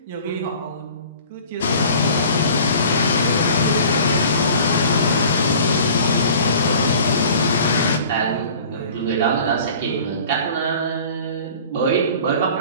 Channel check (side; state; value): both; inverted; correlation -0.46